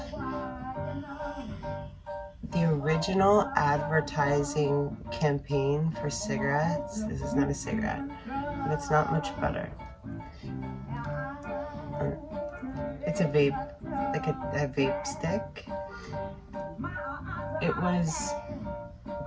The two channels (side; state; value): both; identical; correlation 1.00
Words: the original advertising campaign for cigarettes, this is not a cigarette, but it's not much better. It's a vape, like a vape stick. It was